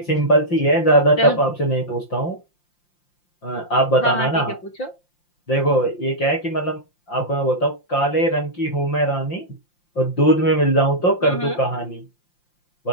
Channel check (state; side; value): late; right; 5.7 ms